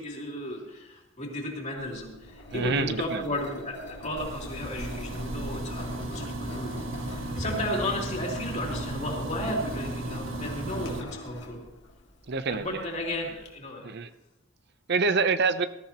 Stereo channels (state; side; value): normal; both; correlation 0.19